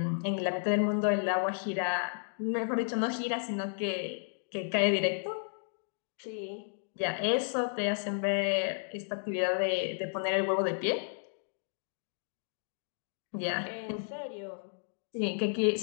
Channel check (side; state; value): right; silent; digital silence